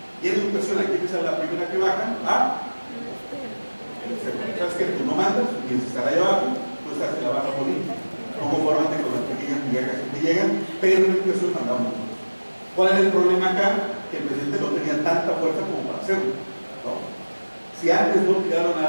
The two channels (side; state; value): both; inverted; correlation -1.00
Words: Y en educación, aquí es la primera que bajan, ¿sabes qué? Tú no mandas, tienes que estar allá abajo, tú estás en la baja política. No conformante con las pequeñas migajas que llegan, pero en educación mandamos nosotros. ¿Cuál es el problema acá? Que el presidente no tenía tanta fuerza como para hacerlo, ¿no? Si antes no tiraron